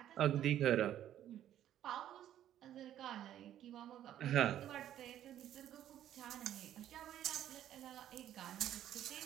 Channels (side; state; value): left; quieter; 11.5 dB